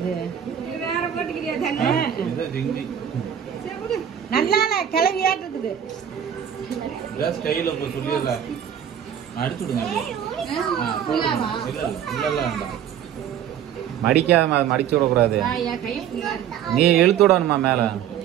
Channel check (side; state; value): left; quieter; 9.4 dB